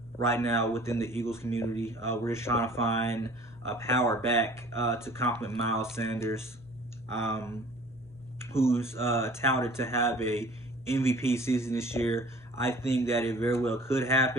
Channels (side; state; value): right; noise; hum, 28 dB below the sound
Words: right now within the Eagles community. We're just trying to find a power back to complement Miles Sanders, um, who's touted to have a MVP season this year. I think that it very well could